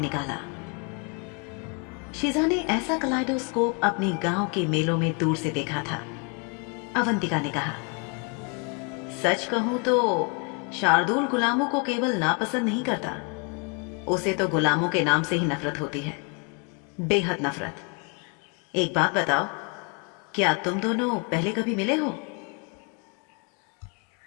शिजा ने ऐसा कलाइडोस्कोप अपने गांव के मेलों में दूर से देखा था। अवंतिका ने कहा, सच कहूं तो शार्दुल गुलामों को केवल नापसंद नहीं करता, उसे तो गुलामों के नाम से ही नफरत होती है, बेहद नफरत। एक बात बताओ, क्या तुम दोनों पहले कभी मिले हो?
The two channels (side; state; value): right; quieter; 34.3 dB